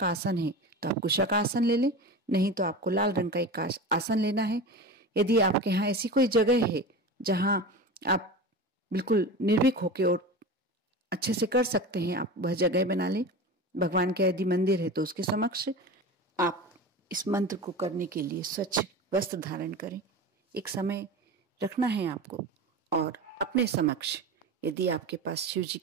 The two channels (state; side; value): normal; both; correlation 0.29